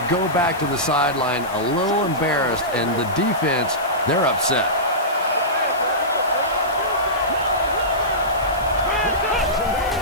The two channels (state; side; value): noise; left; hiss, 19 dB below the sound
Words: go back to the sideline a little embarrassed, and the defense, they're upset.